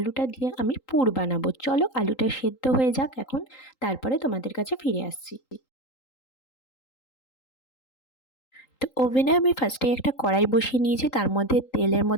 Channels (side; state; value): right; late; 3.8 ms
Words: দিয়ে আমি পুর বানাবো। চলো আলুটা সেদ্ধ হয়ে যাক এখন, তারপরে তোমাদের কাছে ফিরে আসছি। তো ওভেনে আমি ফার্স্টে একটা কড়াই বসিয়ে নিয়েছি, তার মধ্যে তেলের